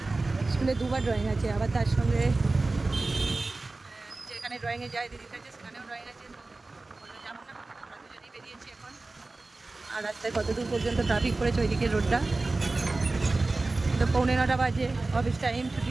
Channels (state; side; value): quieter; left; 3.3 dB